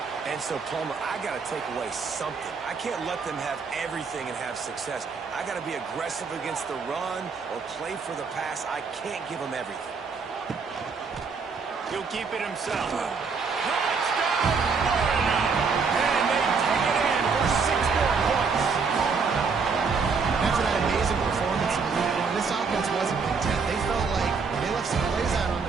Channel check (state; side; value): quieter; left; 5.1 dB